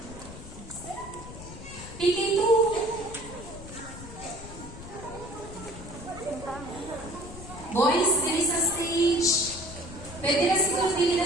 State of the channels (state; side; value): noise; left; rumble, 13 dB below the sound